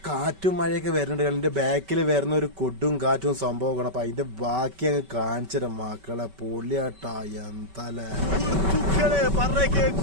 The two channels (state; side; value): late; left; 5.2 ms